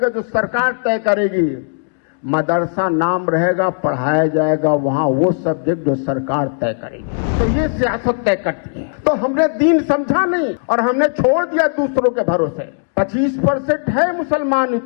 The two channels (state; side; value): silent; right; digital silence